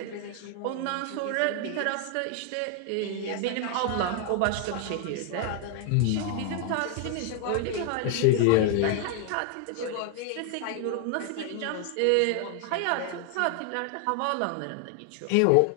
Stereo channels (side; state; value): both; different; correlation 0.00